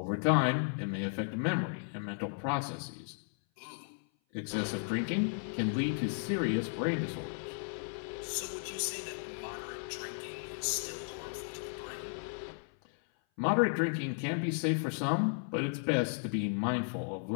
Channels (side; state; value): right; silent; 55 dB below the other